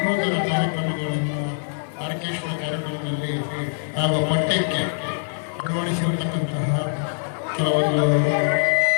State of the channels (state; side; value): silent; right; digital silence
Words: ಕಾರ್ಯಕ್ರಮಗಳನ್ನು ಆರ್ಕೆಸ್ಟ್ರಾ ಕಾರ್ಯಕ್ರಮದಲ್ಲಿ ಹಾಗೂ ಪಠ್ಯಕ್ಕೆ ಅಳವಡಿಸಿರತಕ್ಕಂತಹ ಕೆಲವೊಂದು